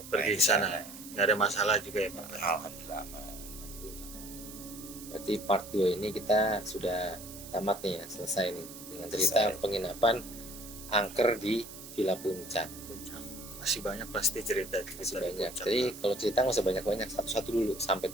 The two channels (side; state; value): right; noise; hiss, 14 dB below the sound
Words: Pergi naik ke sana. Nggak ada masalah juga ya Pak. Alhamdulillah aman. Berarti part 2 ini kita sudah tamat nih ya, selesai nih dengan cerita Selesai. penginapan angker di Villa Puncak. Masih banyak pasti cerita Masih di banyak. Puncak. Jadi kalau cerita nggak usah banyak-banyak, satu-satu dulu sampai